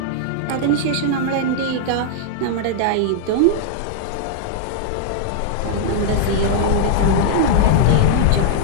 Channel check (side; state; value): both; different; correlation -0.01